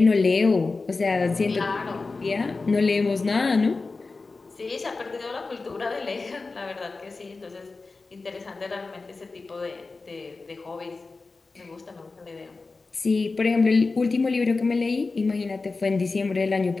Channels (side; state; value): right; quieter; 3.9 dB